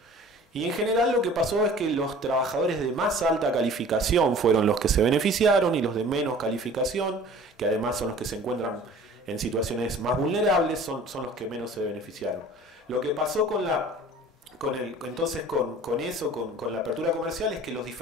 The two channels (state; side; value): normal; both; correlation 0.46